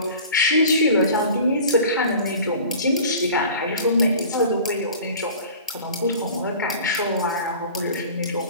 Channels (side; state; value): both; inverted; correlation -0.42